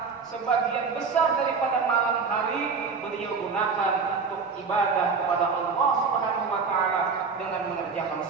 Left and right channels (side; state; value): left; quieter; 5.1 dB